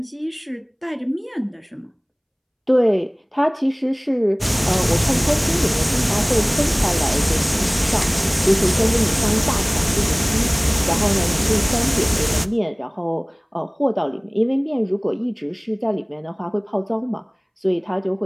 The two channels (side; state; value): both; identical; correlation 1.00